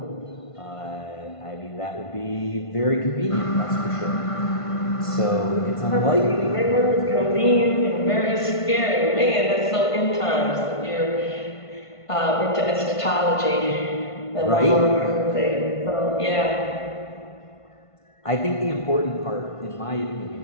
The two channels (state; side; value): late; right; 1.5 ms